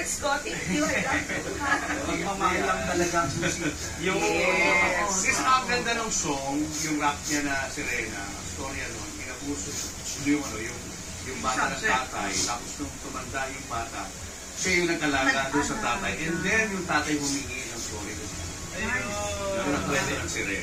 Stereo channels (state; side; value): identical; both; correlation 1.00